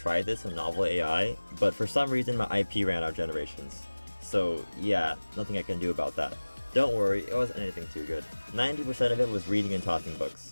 this in Novel AI, but for some reason my IP ran out of generations. So yeah, nothing I can do about that. Don't worry, it wasn't anything too good. 90% of it was reading and talking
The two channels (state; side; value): inverted; both; correlation -1.00